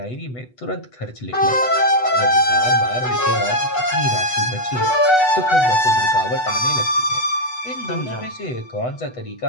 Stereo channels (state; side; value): late; right; 8.1 ms